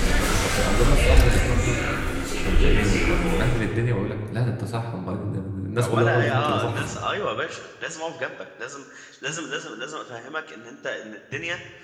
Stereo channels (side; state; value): both; identical; correlation 1.00